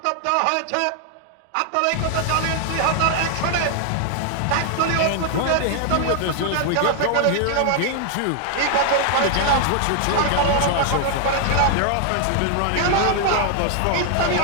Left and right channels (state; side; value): different; both; correlation 0.00